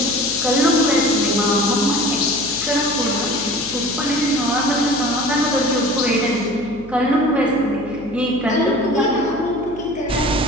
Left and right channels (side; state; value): left; noise; hum, 19 dB below the sound